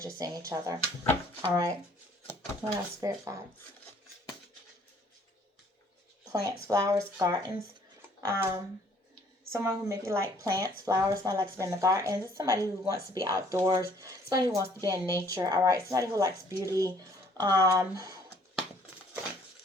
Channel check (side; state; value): both; normal; correlation 0.60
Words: seeing each other. All right. What else, spirit guides? Plants, flowers, gardens. Someone who maybe like plants, flowers, somebody likes to be in the garden. This is somebody who wants to be outdoors, somebody who wants to be in nature, all right? Somebody who likes beauty.